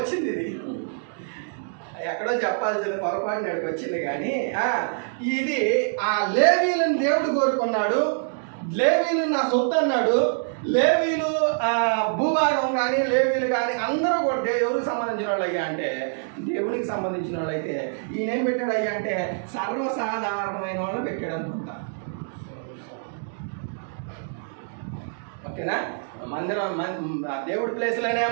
ఇది ఎక్కడో చెప్పాల్సింది పొరపాటు నాడికి వచ్చింది. కానీ ఇది ఆ లేవీలను దేవుడు కోరుకున్నాడు. లేవీలు నా సొత్తు అన్నాడు. లేవీలు భూభాగం కానీ లేవీలు కానీ అందరూ కూడా ఎవరికి సంబంధించిన వాళ్ళు అయ్యా అంటే దేవునికి సంబంధించిన వాళ్ళు. అయితే ఈయన ఏం పెట్టాడు అయ్యా అంటే సర్వసాధారణమైన వాళ్ళు పెట్టాడు అనుకుంటా. ఓకేనా? మందిరం దేవుడి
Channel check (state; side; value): silent; left; digital silence